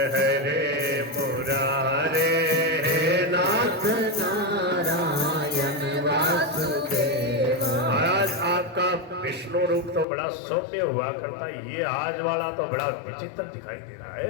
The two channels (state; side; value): drops out; right; at 10.1 s